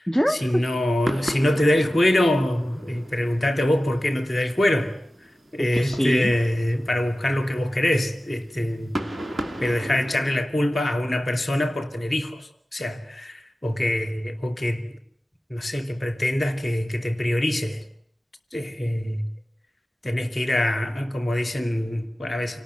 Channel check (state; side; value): normal; both; correlation 0.95